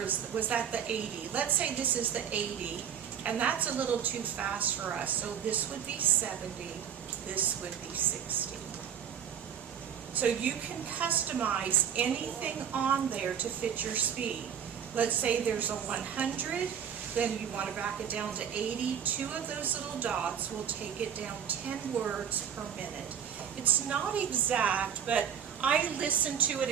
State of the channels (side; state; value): left; quieter; 8.5 dB